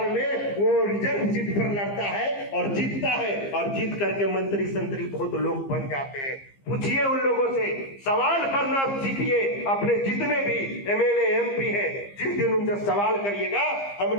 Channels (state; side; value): late; right; 15 ms